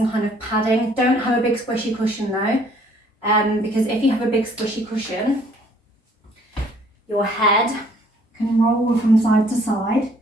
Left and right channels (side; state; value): both; normal; correlation 0.60